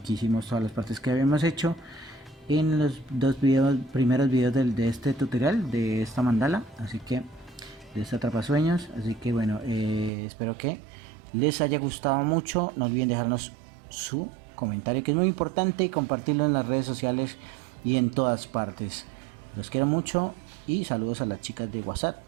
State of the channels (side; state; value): left; drops out; at 10.1 s